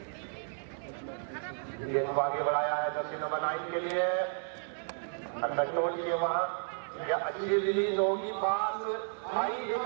आगे बढ़ाया है जर्सी नंबर 9 के लिए, कंट्रोल किए वहां, या अच्छी रिलीज होगी, पास आई, एक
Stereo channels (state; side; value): silent; left; 56 dB below the other